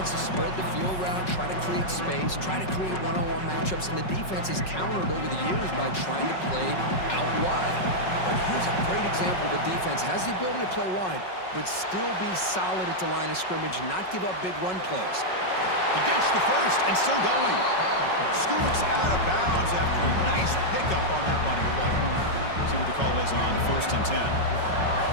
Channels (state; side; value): late; right; 5.4 ms